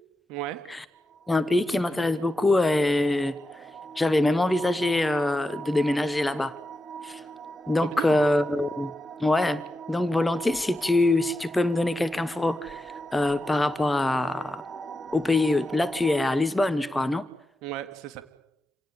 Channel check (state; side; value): normal; both; correlation 0.90